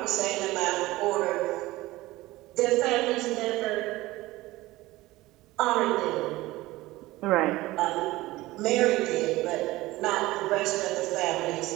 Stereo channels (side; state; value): left; quieter; 18.6 dB